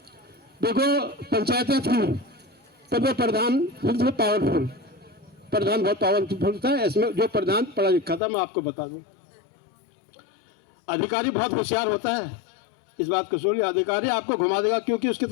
देखो पंचायतें थी तब वो प्रधान पावरफुल, प्रधान बहुत पावरफुल था। इसमें जो प्रधान पढ़ा लिखा था, मैं आपको बता दूं, अधिकारी बहुत होशियार होता है, इस बात को सुनिए। अधिकारी आपको घुमा देगा क्योंकि उसकी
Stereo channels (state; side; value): drops out; right; at 8.2 s